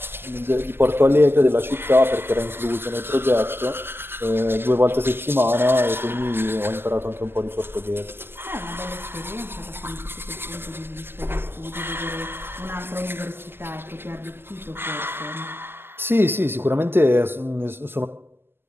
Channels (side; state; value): left; late; 0.11 ms